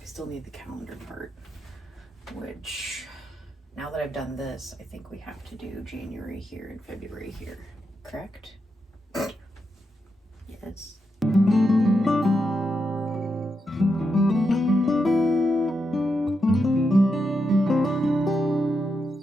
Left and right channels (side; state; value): both; normal; correlation 0.84